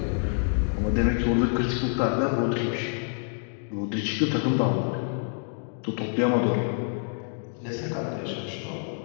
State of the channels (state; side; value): silent; right; 56 dB below the other